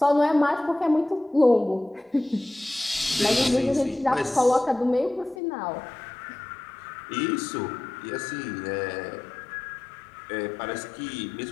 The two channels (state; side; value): drops out; right; at 5.4 s